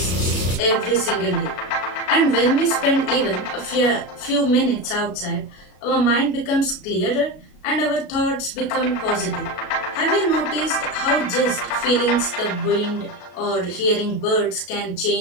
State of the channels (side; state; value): right; late; 33 ms